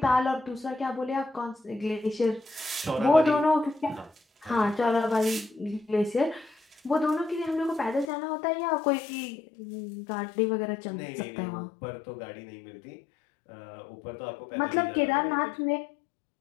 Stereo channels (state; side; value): drops out; right; at 8.1 s